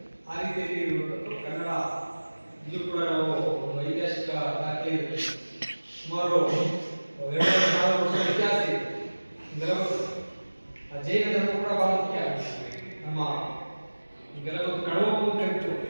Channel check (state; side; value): inverted; both; correlation -1.00